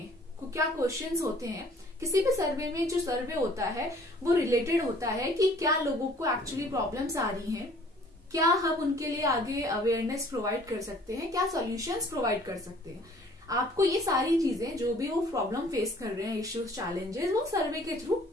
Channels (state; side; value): normal; both; correlation 0.55